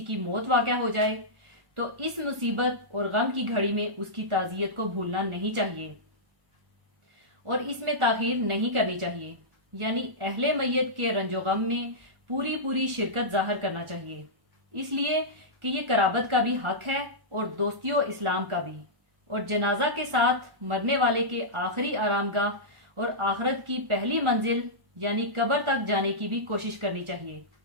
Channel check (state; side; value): late; left; 1.1 ms